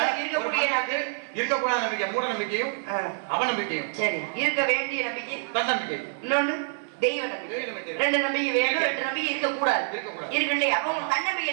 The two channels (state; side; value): silent; left; 56 dB below the other